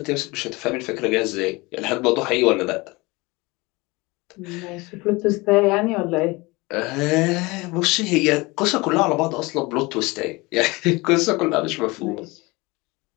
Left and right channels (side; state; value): right; quieter; 23.9 dB